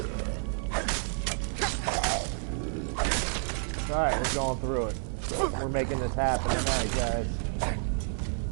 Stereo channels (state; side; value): silent; left; 58 dB below the other